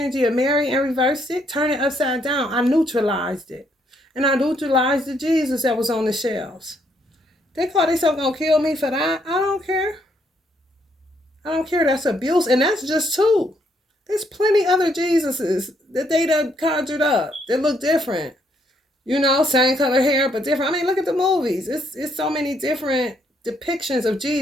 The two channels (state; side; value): normal; both; correlation 0.72